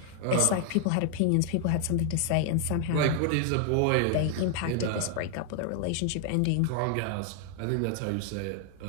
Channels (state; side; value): different; both; correlation 0.00